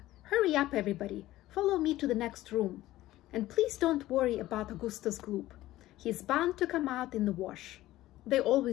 Hurry up everybody, follow me to the next room. And please don't worry about Augustus Gloop. He's bound to come out in the wash. They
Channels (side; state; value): right; quieter; 15.8 dB